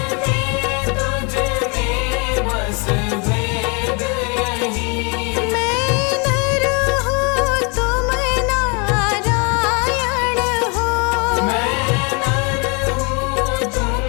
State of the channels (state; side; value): quieter; right; 32.7 dB